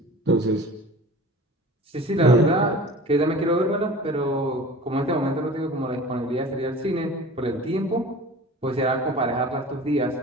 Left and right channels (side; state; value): both; normal; correlation 0.40